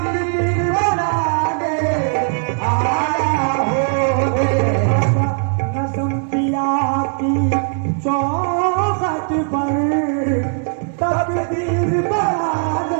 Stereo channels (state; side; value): silent; left; 55 dB below the other